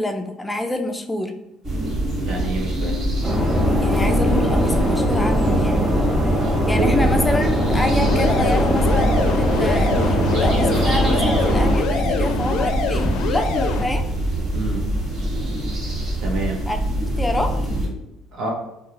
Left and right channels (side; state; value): both; normal; correlation 0.73